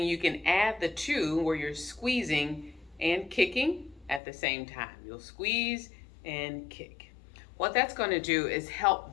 you can add the two where you're squeezing and kicking at the same time. You'll squeeze and kick. What that's going to do is help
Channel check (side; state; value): right; drops out; at 4.2 s